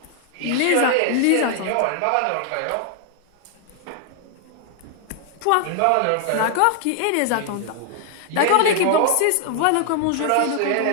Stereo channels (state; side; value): different; both; correlation 0.00